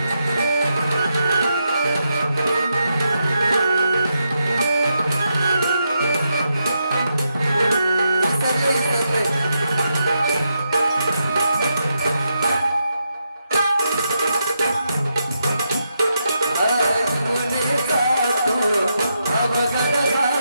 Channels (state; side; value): inverted; both; correlation -0.83